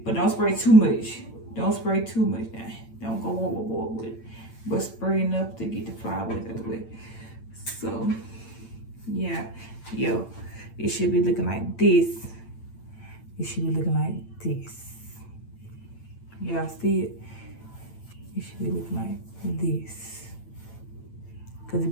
But don't spray too much. Don't spray too much now. Don't go overboard with it. But spray enough to get the flyaways out of the way. So, yeah. Yo, it should be looking like this. It should be looking like this. Y'all see it? It should be looking like this. Because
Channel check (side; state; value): right; late; 8.9 ms